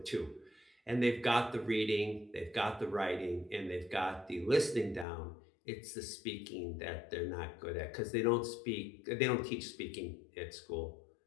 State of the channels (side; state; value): right; drops out; at 5.1 s